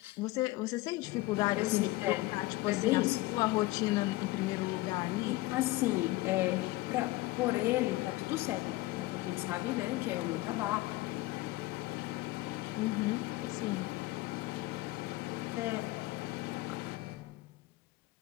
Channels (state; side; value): quieter; right; 19.5 dB